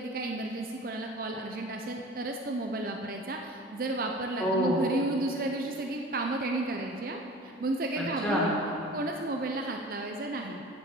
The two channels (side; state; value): both; normal; correlation 0.41